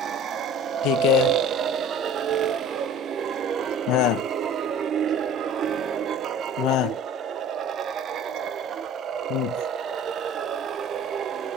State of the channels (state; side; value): normal; both; correlation 0.44